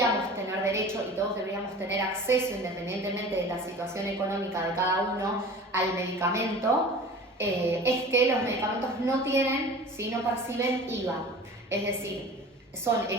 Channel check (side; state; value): both; normal; correlation 0.40